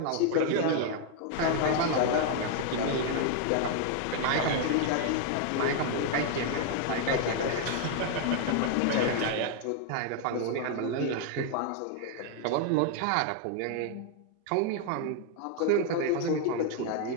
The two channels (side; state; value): both; different; correlation 0.00